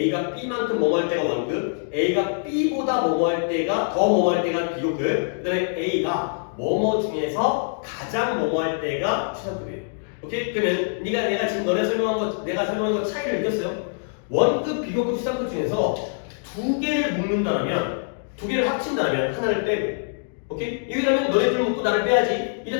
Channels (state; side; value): silent; right; digital silence